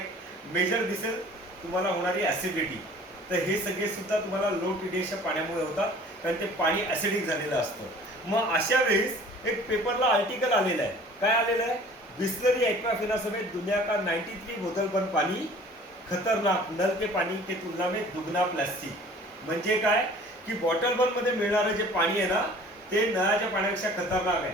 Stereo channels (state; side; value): normal; both; correlation 0.48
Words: मेजर दिसेल तुम्हाला होणारी ॲसिडिटी. तर हे सगळे सुद्धा तुम्हाला लो TDSच्या पाण्यामुळे होतात कारण ते पाणी ॲसिडिक झालेलं असतं. मग अशा वेळेस एक पेपरला आर्टिकल आलेलं आहे. काय आलेलं आहे? बिस्लरी एक्वाफिना समेत दुनिया का 93 बोतल बंद पाणी खतरनाक, नल के पाणी के तुलना में दुगना प्लास्टिक. म्हणजे काय की बॉटल बंद मध्ये मिळणारं जे पाणी आहे ना ते नळाच्या पाण्यापेक्षा खतरनाक आहे.